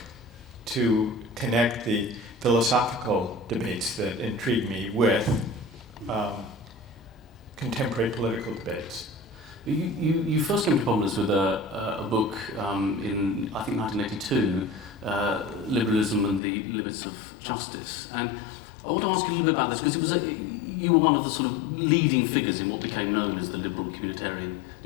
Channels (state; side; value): drops out; right; at 16.4 s